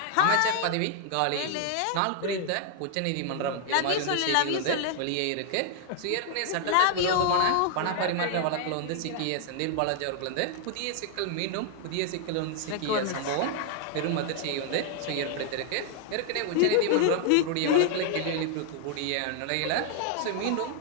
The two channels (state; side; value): different; both; correlation 0.00